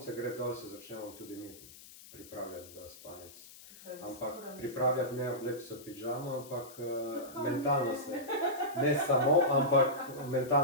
gre dol, se začnemo tudi mi pripravljati za spanec. Se pravi, Ampak skoro pripravljati ne obleči se v pižamo, ampak Zakaj mentalno ne? se, ne samo, ampak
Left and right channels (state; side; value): noise; left; hiss, 19 dB below the sound